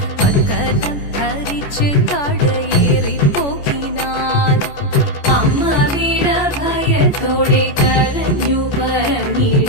പക്കലം ധരിച്ച് കടയേറിപ്പോകിനാൽ അമ്മ വീട ഭയത്തോടെ കരഞ്ഞു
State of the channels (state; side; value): late; right; 14 ms